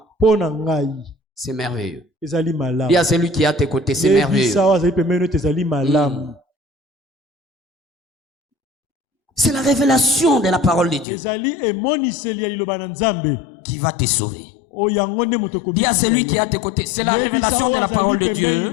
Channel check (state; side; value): drops out; right; at 11.1 s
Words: C'est merveilleux. Il y a celui qui est à tes côtés, c'est merveilleux. C'est la révélation de la parole de Dieu qui va te sauver. Dis à celui qui est à tes côtés, c'est la révélation de la parole de Dieu